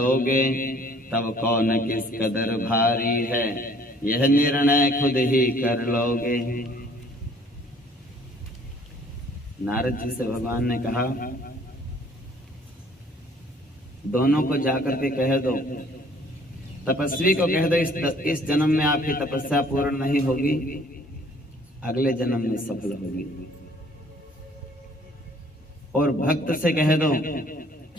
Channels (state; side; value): normal; both; correlation 0.57